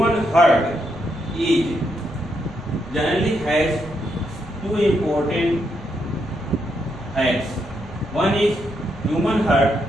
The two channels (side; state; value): right; noise; rumble, 18 dB below the sound